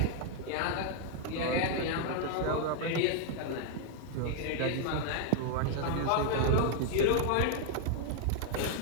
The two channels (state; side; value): different; both; correlation 0.00